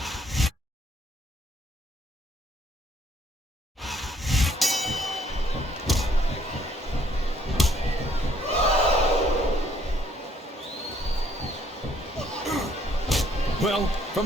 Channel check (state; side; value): normal; both; correlation 0.65